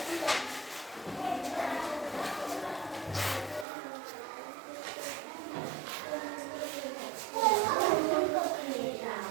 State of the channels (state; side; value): drops out; left; at 3.7 s